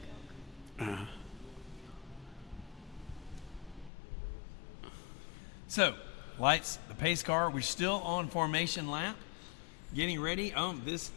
Coke. So, lights, the pace car. We're still on formation lap. Getting ready. Hey,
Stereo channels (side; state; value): right; drops out; at 3.9 s